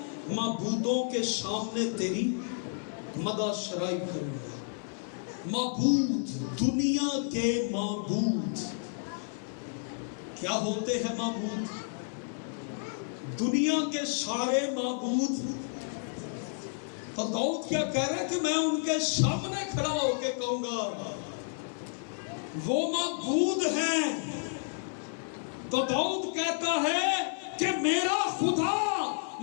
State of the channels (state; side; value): silent; right; 57 dB below the other